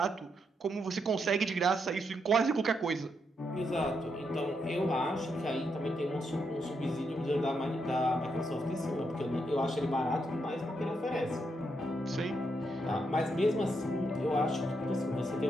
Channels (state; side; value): normal; both; correlation 0.80